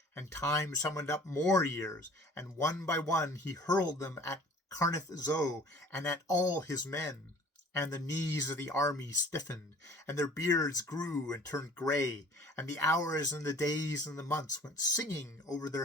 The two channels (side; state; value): both; normal; correlation 0.49